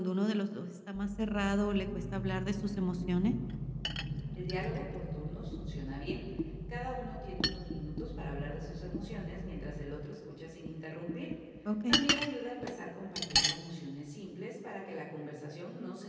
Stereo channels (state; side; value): identical; both; correlation 1.00